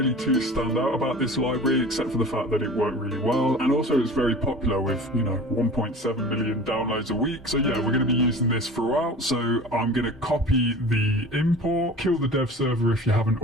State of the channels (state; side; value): normal; both; correlation 0.39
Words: too stand out about this library except for the fact that it worked really well, and also it's very popular with 1.7 million downloads a week. So yeah, we're going to be using this throughout. So I'm going to copy the import, kill the dev server if you haven't